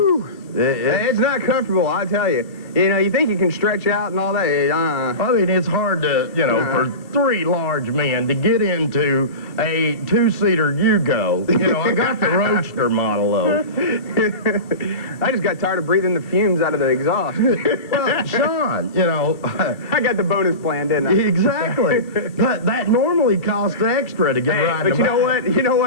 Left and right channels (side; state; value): right; late; 2.5 ms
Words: It's not comfortable, I tell you. You know, you think you can stretch out and all that. I mean, it's hard to, you know, for 3 large men to get into a 2-seater Yugo. You know, I got the Roadster model, though. I just got tired of breathing the fumes out of the exhaust. Well, Sean, you know. I got the bonus plan, didn't I? Exactly. That normally costs extra to get right in the back. But you know